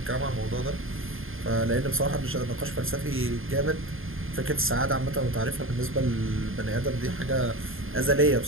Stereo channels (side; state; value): left; late; 0.60 ms